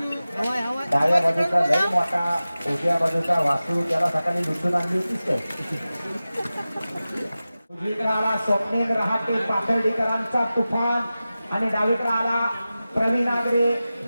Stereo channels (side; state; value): both; inverted; correlation -0.95